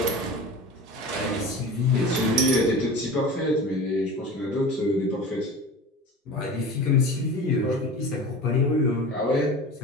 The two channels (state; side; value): normal; both; correlation 0.34